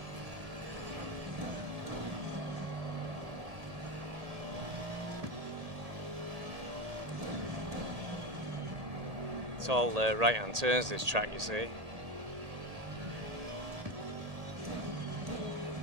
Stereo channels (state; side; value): late; left; 1.8 ms